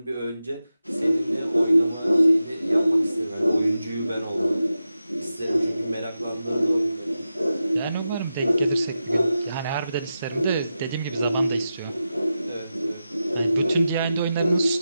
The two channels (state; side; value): inverted; both; correlation -0.91